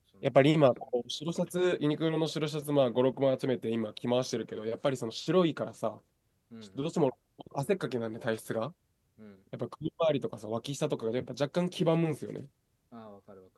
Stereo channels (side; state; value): both; identical; correlation 1.00